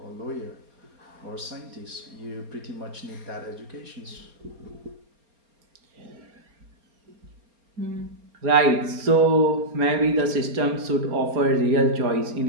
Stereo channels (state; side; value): late; left; 4.3 ms